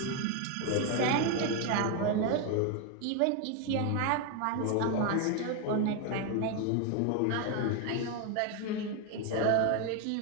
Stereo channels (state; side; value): different; both; correlation 0.01